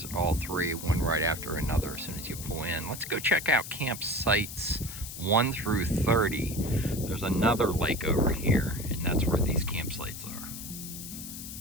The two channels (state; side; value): noise; left; hiss, 10 dB below the sound